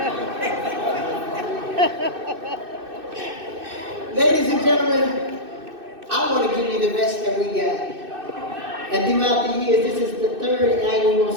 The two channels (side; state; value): left; late; 2.6 ms